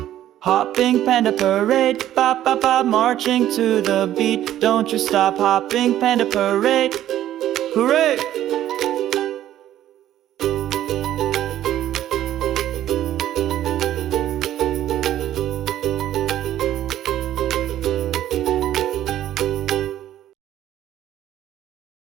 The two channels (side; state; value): left; quieter; 12.4 dB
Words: Hopping panda parade, bop, bop, bop, marching to the beat. Don't you stop, hopping panda parade. Hooray!